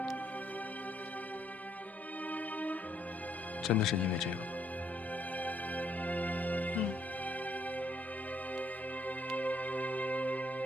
真的是因为这个吗？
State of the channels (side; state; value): both; normal; correlation 0.70